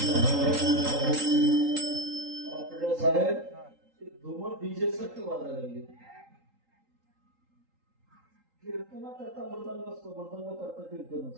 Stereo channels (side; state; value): left; late; 3.8 ms